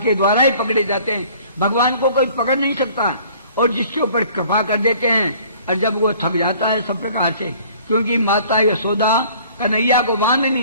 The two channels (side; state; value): both; inverted; correlation -0.53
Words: द्वारा ही पकड़े जाते हैं। भगवान को कोई पकड़ नहीं सकता और जिसके ऊपर कृपा कर देते हैं और जब वो थक जाता है सब प्रकार से, क्योंकि माता यशोदा कन्हैया को